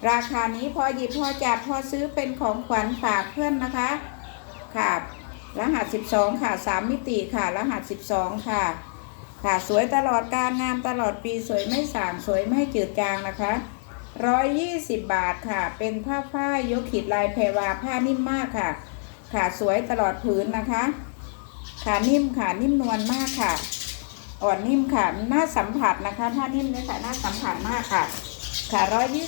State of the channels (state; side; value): silent; right; digital silence